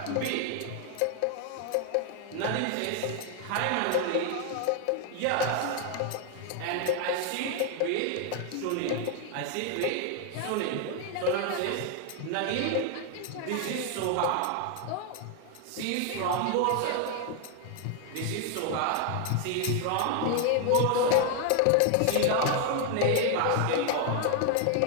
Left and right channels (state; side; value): different; both; correlation 0.00